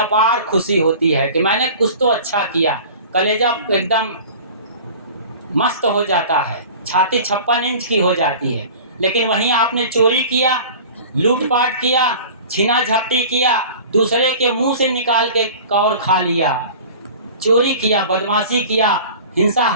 खुशी होती है कि मैंने कुछ तो अच्छा किया। कलेजा एकदम मस्त हो जाता है, छाती 56 इंच की हो जाती है। लेकिन वहीं आपने चोरी किया, लूटपाट किया, छीना झपटी किया, दूसरे के मुंह से निकाल के कौर खा लिया, चोरी किया, बदमाशी किया, हिंसा,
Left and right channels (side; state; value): both; inverted; correlation -0.40